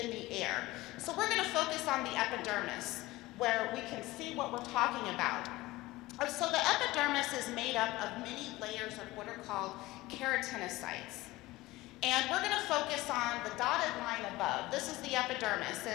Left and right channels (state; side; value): quieter; right; 19.0 dB